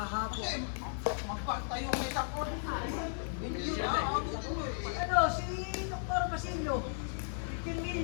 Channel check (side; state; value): right; silent; 54 dB below the other